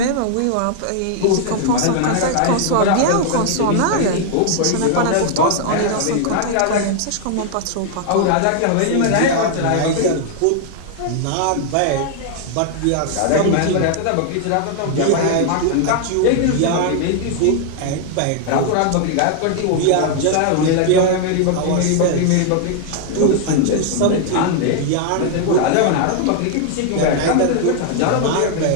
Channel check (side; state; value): both; different; correlation 0.00